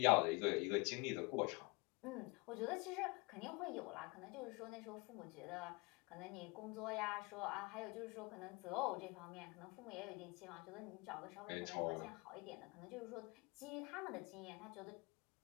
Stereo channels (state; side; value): quieter; right; 27.7 dB